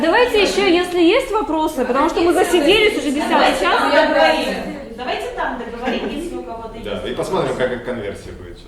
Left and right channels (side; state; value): both; identical; correlation 1.00